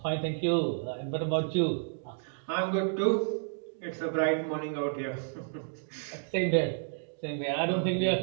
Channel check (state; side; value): silent; left; digital silence